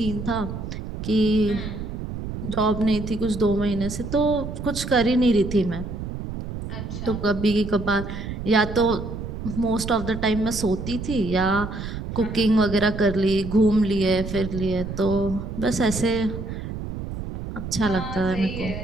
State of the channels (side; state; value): right; noise; rumble, 7 dB below the sound